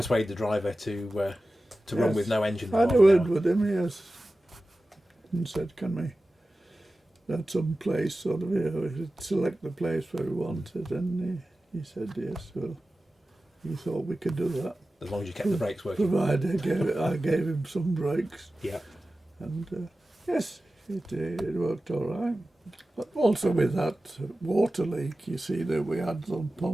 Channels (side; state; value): both; normal; correlation 0.95